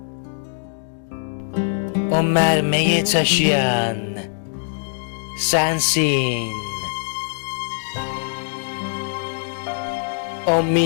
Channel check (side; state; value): right; silent; digital silence